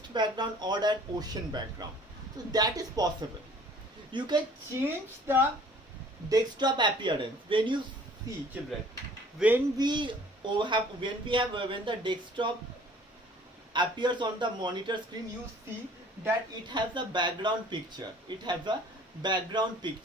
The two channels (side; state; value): both; normal; correlation 0.53